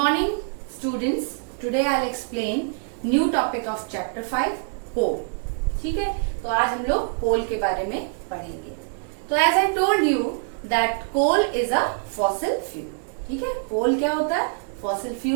students. Today I'll explain new topic of chapter 5, coal. ठीक है, तो आज हम लोग coal के बारे में पढ़ेंगे. तो as I told you that coal is a fossil fuel. ठीक है, coal क्या होता है? Fossil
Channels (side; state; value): left; silent; digital silence